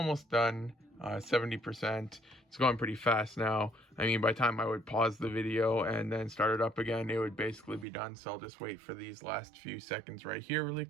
done. 70%. It's going pretty fast now. I mean, by the time I would pause the video and then start it up again, it would basically be done. So I'll just wait for these last few seconds right here really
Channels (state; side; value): drops out; left; at 7.9 s